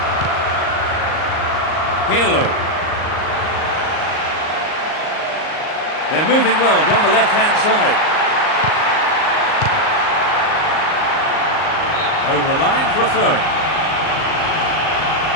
Pirlo. They're moving well down the left-hand side. Over the line for a throw-in.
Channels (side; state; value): right; late; 38 ms